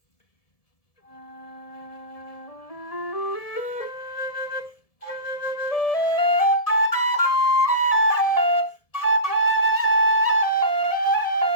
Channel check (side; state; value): right; late; 1.7 ms